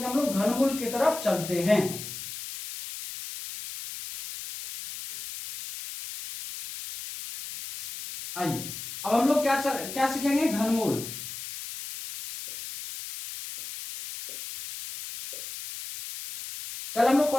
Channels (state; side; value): noise; left; hiss, 9 dB below the sound